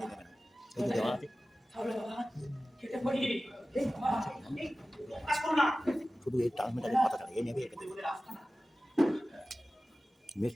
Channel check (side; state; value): both; normal; correlation 0.96